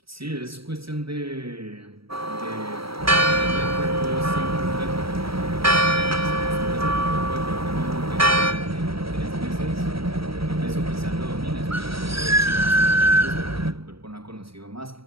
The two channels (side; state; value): left; late; 0.75 ms